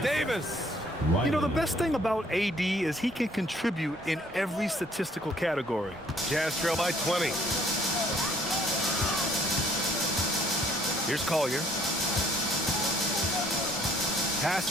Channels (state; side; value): normal; both; correlation 0.60